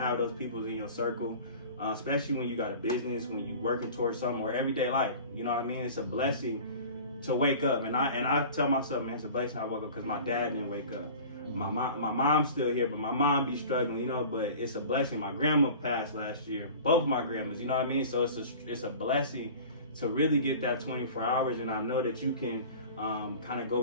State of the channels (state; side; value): inverted; both; correlation -0.40